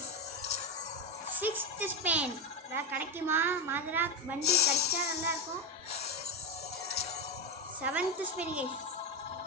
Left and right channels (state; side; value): normal; both; correlation 0.12